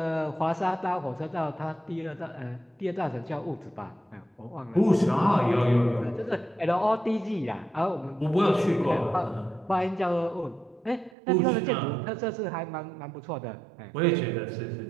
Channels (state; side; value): drops out; left; at 11.2 s